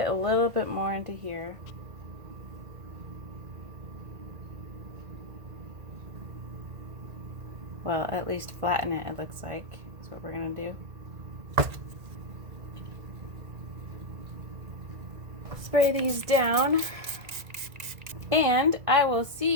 a little bit more into here. Well, at least flatten it, it looks like. That's what we're gonna do. Spray these down, and I will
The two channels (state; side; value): late; left; 1.8 ms